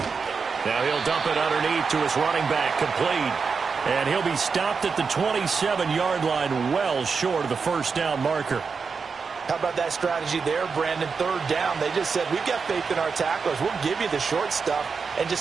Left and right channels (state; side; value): quieter; left; 5.3 dB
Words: Now he'll dump it underneath to his running back, complete. And he'll be stopped at the 27-yard line, well short of the first down marker. How about that strategy there, Brandon? 3rd down, they just said, we've got faith in our tacklers. We'll give you the short stuff, and